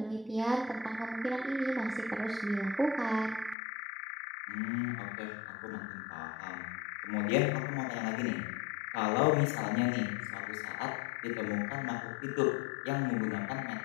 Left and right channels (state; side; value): drops out; right; at 3.6 s